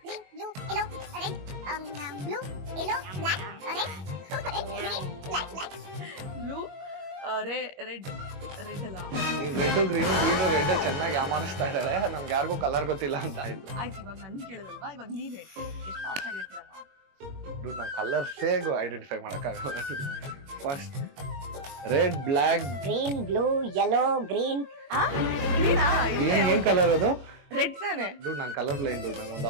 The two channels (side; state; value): left; late; 21 ms